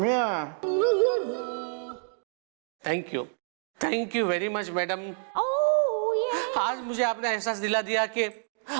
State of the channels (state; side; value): silent; left; digital silence